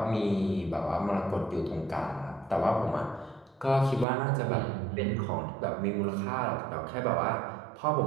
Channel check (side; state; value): left; drops out; at 4.0 s